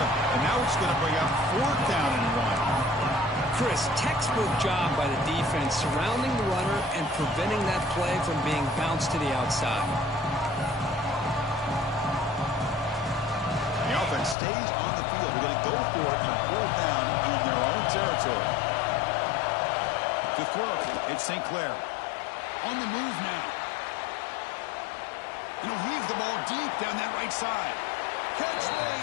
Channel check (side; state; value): right; drops out; at 14.4 s